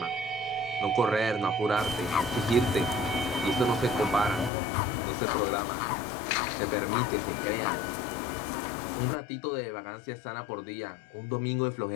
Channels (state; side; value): drops out; right; at 4.5 s